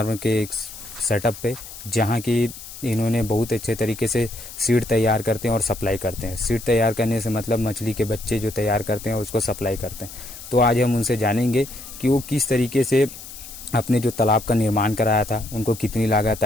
के एक सेटअप पे, जहां की इन्होंने बहुत अच्छे तरीके से सीड तैयार करते हैं और सप्लाई करते हैं। सीड तैयार करने से मतलब मछली के बच्चे जो तैयार करते हैं उसको सप्लाई करते हैं। तो आज हम उनसे जानेंगे कि वो किस तरीके से अपने जो तालाब का निर्माण कराया था, उनको कितनी लागत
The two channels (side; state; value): left; noise; hiss, 14 dB below the sound